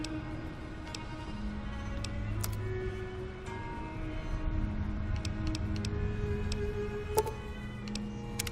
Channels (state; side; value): identical; both; correlation 1.00